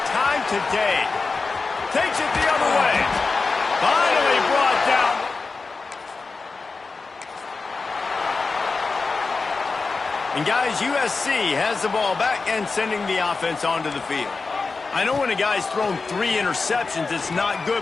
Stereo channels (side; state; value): right; quieter; 4.2 dB